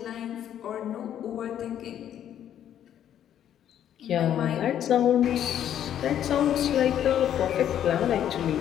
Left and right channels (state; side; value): quieter; right; 10.3 dB